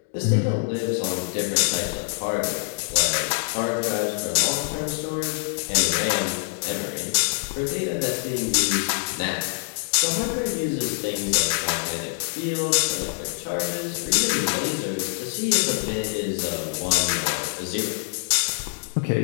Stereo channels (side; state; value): right; silent; digital silence